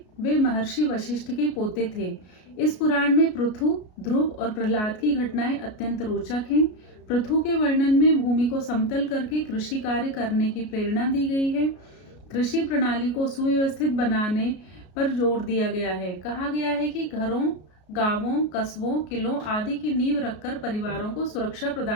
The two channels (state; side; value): late; right; 33 ms